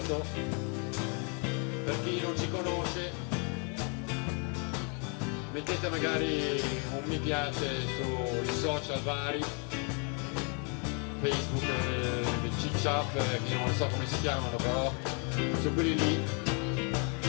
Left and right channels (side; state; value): right; quieter; 37.2 dB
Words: Per chi non ci conosce, mettete magari un mi piace sui social vari, Facebook, CiCiap, che non so come si chiamano, però su quelli lì.